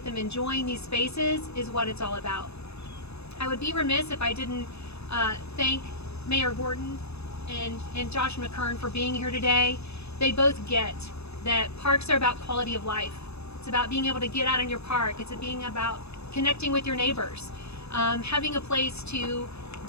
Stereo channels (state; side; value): late; right; 0.79 ms